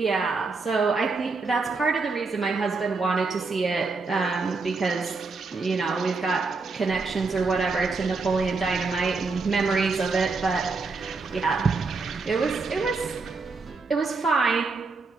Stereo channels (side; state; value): left; quieter; 4.1 dB